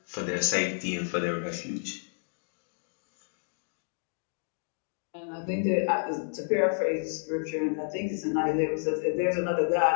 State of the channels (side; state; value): right; silent; digital silence